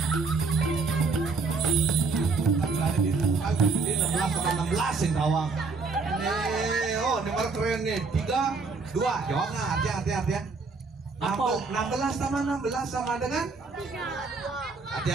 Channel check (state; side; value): quieter; left; 4.2 dB